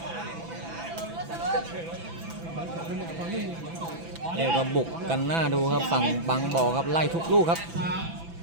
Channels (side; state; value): left; late; 6.0 ms